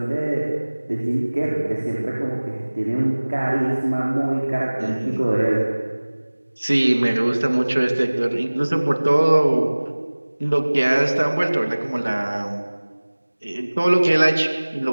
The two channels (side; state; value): both; inverted; correlation -1.00